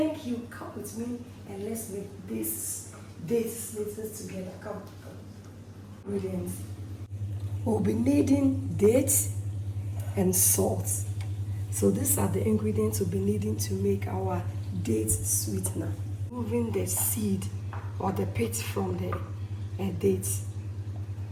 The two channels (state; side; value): identical; both; correlation 1.00